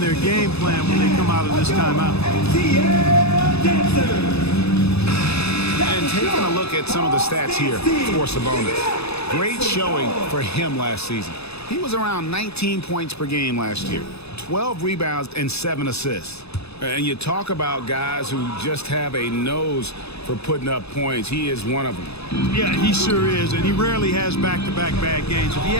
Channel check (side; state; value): right; late; 0.79 ms